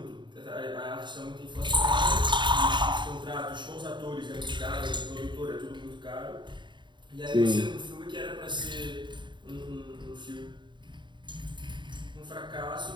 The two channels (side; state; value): left; late; 0.23 ms